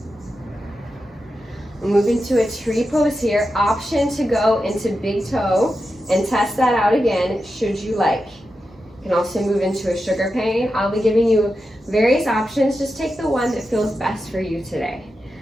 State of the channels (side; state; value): both; normal; correlation 0.89